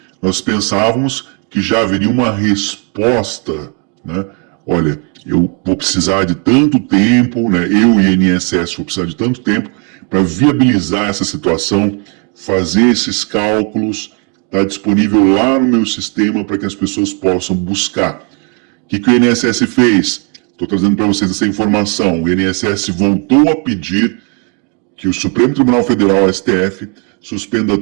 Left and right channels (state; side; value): quieter; left; 36.5 dB